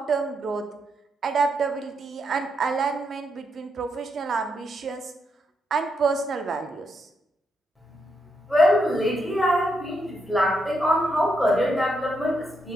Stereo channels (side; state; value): both; normal; correlation 0.81